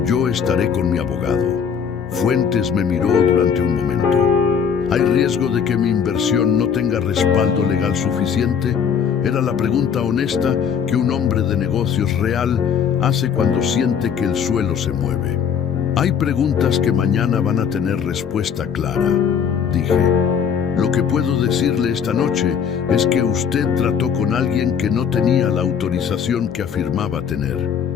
yo estaré con mi abogado. Fuentes me miró durante un momento. ¿Hay riesgo de que mi inversión no tenga respaldo legal suficiente? Era la pregunta honesta que un hombre de negocios real hace cuando siente que el suelo se mueve. Hay preguntas que mañana van a tener respuesta clara, dije. Lo que puedo decirle esta noche es que usted trató con alguien que no tenía la autorización que afirmaba tener.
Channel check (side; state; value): right; quieter; 7.4 dB